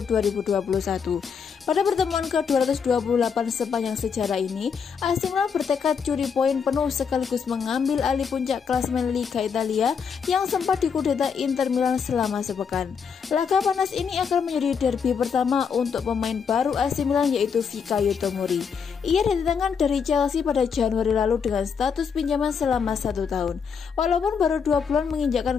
Pada pertemuan ke-228 sepanjang sejarah ini, AC Milan bertekad curi poin penuh sekaligus mengambil alih puncak klasemen Liga Italia yang sempat dikudeta Inter Milan selama sepekan. Laga panas ini akan menjadi derby pertama untuk pemain baru AC Milan yaitu Fikayo Tomori. Ia didatangkan dari Chelsea pada Januari lalu dengan status pinjaman selama 1 tahun. Walaupun baru 2 bulan menginjakkan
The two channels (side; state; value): right; quieter; 6.4 dB